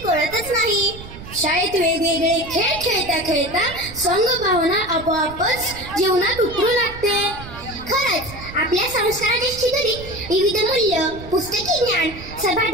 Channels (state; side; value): noise; right; rumble, 14 dB below the sound